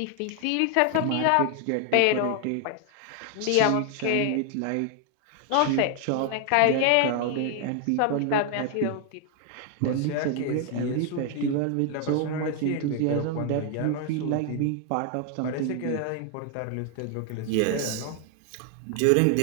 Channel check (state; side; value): different; both; correlation 0.00